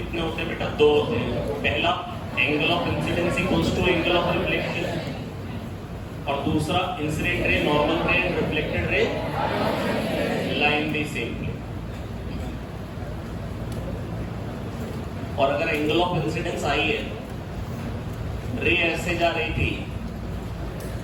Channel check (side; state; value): both; identical; correlation 1.00